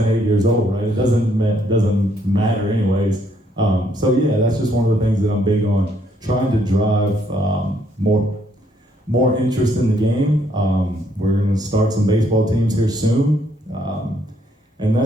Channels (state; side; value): normal; both; correlation 0.70